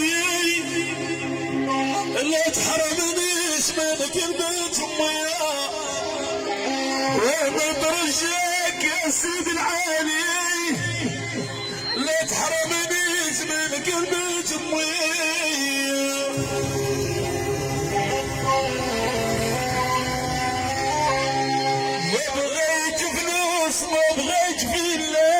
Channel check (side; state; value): both; identical; correlation 1.00